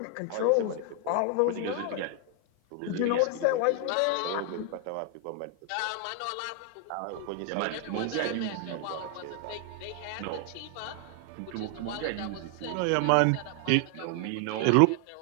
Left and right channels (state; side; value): different; both; correlation 0.00